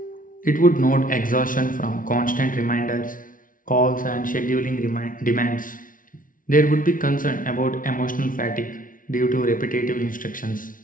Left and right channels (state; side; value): late; right; 0.39 ms